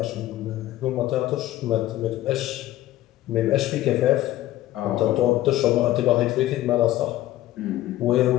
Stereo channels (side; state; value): right; quieter; 14.8 dB